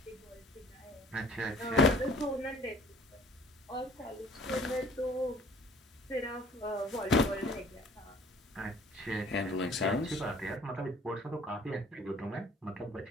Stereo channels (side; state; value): both; normal; correlation 0.54